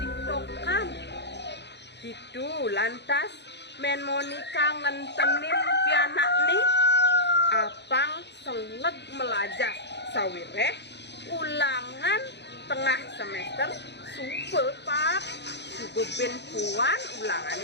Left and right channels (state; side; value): late; right; 0.50 ms